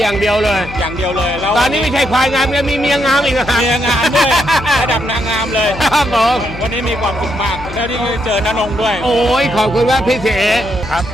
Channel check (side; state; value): left; noise; hum, 13 dB below the sound